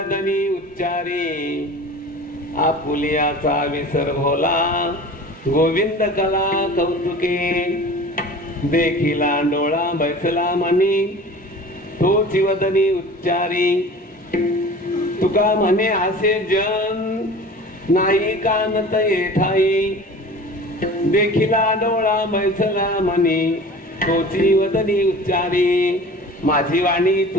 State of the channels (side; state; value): both; normal; correlation 0.40